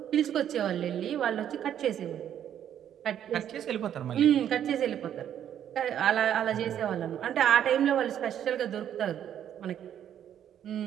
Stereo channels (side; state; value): left; quieter; 10.0 dB